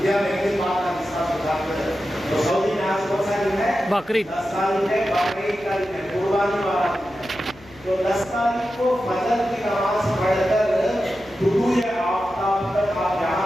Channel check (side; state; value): left; noise; hum, 23 dB below the sound